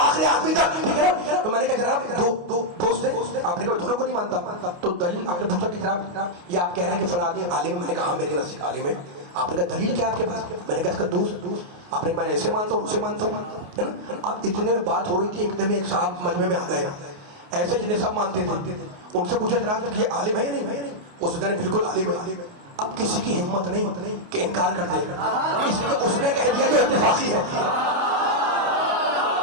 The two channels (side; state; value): left; late; 28 ms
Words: آدمی تک, ٹھیک ہے نا. تو میں نے کہا جناب دو دوست ہیں, آپ نے کہا دونوں کو نہیں مانتا, تو دلیل آپ نے پوچھا کہ جناب یہ آپ کہہ رہے ہیں کہ فلاں عالم. میں نے کہا میرے نزدیک عالم ہے. آپ نے کہا دلیل کیا آپ کے پاس؟ میں نے کہا اس کا دوست. آپ نے میں نے ایسے مانتا ہوں اسے مانتا ہوں. اب اتنے میں بات ہو رہی تھی, ایک دم ایک صاحب مجمع میں آ گئے ایسے جنہیں سب مانتے تھے. ان سے پوچھا جناب کہ یہ عالم ہے یا نہیں؟ اس نے بالکل عالم ہے. اب کسی کی ہمت نہیں کہ انکار کر دے, اس لیے اس نے کہہ دیا کہ اتفاقی ہے.